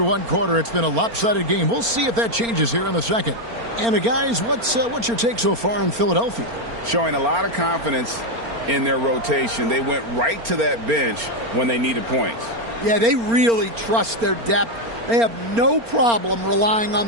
one quarter, it's been a lopsided game. We'll see if that changes here in the second. And guys, what's your take so far in Philadelphia? Showing a lot of confidence in their rotation. They went right to that bench when they needed points. Yeah, they really trust their depth. They have no problem relying on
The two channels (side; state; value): left; late; 4.3 ms